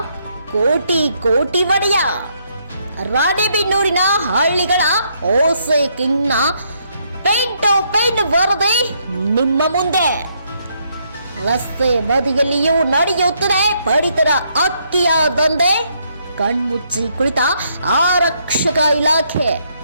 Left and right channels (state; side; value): inverted; both; correlation -0.73